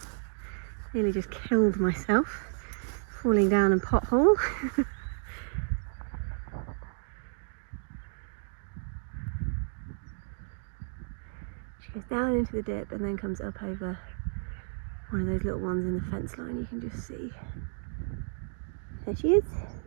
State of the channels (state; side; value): silent; left; digital silence